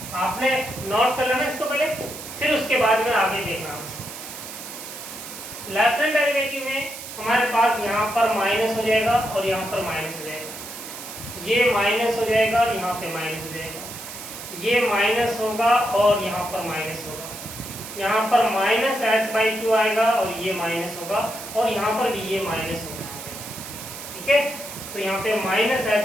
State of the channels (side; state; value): right; noise; hiss, 11 dB below the sound